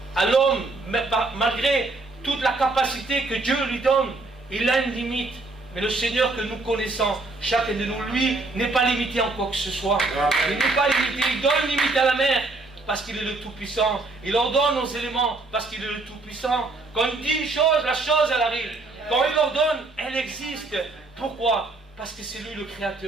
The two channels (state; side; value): quieter; left; 3.3 dB